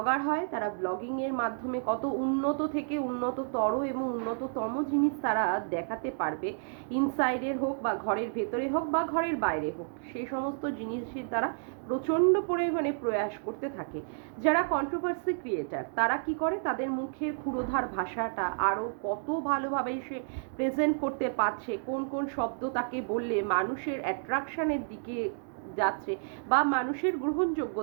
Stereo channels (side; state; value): left; silent; digital silence